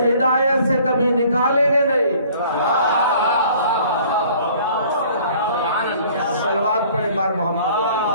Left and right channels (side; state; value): both; inverted; correlation -0.54